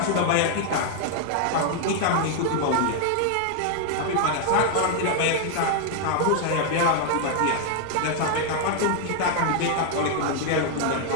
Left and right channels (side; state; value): both; different; correlation 0.00